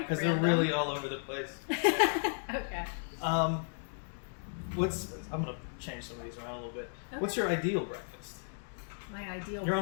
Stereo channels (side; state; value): right; silent; digital silence